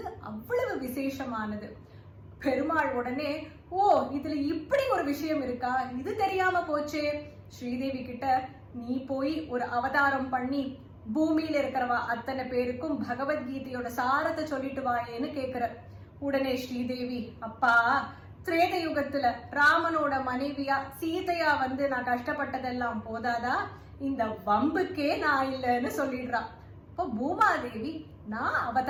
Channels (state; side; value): identical; both; correlation 1.00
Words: அவ்வளவு விசேஷமானது. பெருமாள் உடனே, ஓ இதுல இப்படி ஒரு விஷயம் இருக்கா, இது தெரியாம போச்சே, ஸ்ரீதேவி கிட்ட நீ போய் ஒரு அவதாரம் பண்ணி பூமியில இருக்கிறவா அத்தனை பேருக்கும் பகவத்கீதையோட சாரத்தை சொல்லிட்டு வாயேன்னு கேக்குற. உடனே ஸ்ரீதேவி, அப்பா திரேத யுகத்துல ராமனோட மனைவியா சீதையா வந்து நான் கஷ்டப்பட்டதெல்லாம் போதாதா, இந்த வம்புக்கே நான் இல்லைன்னு சொல்லிடுறா. இப்போ பூமாதேவி, நான்